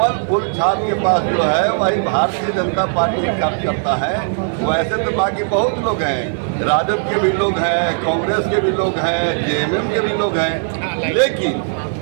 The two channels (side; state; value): left; silent; digital silence